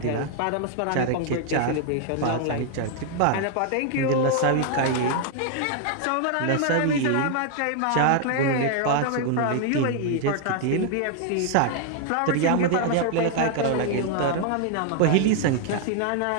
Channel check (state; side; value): different; both; correlation 0.00